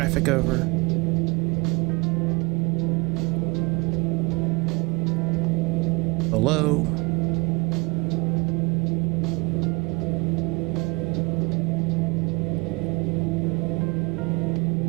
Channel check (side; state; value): left; quieter; 26.8 dB